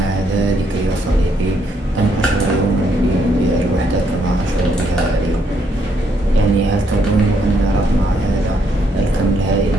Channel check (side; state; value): both; normal; correlation 0.73